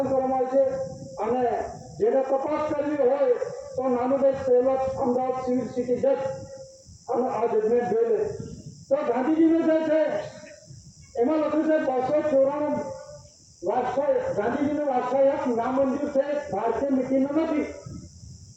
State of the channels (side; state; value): both; identical; correlation 1.00